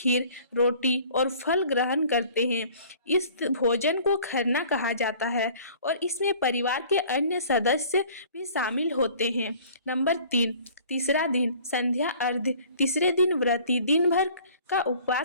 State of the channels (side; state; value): both; inverted; correlation -0.50